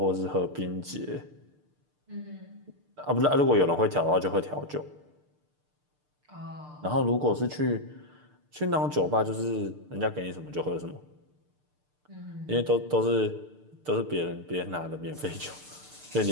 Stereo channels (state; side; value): late; left; 6.7 ms